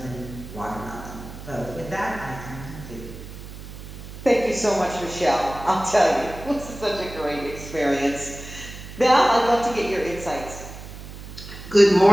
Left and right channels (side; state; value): right; noise; hum, 13 dB below the sound